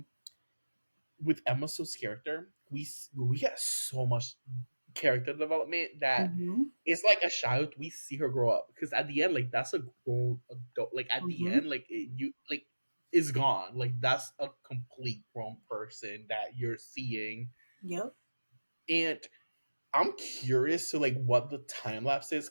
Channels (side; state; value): both; inverted; correlation -1.00